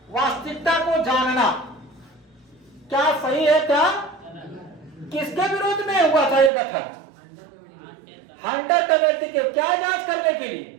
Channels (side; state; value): left; drops out; at 6.5 s